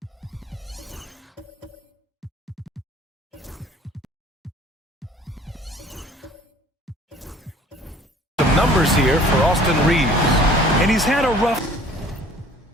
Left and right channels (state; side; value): normal; both; correlation 0.51